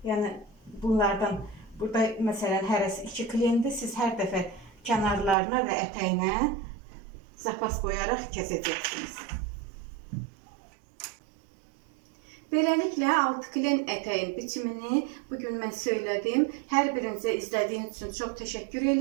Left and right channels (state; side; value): drops out; left; at 5.4 s